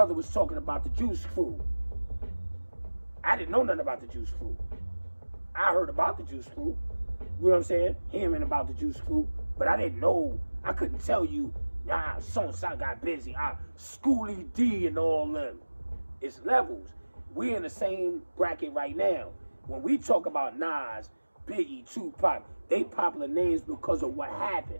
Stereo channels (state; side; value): inverted; both; correlation -1.00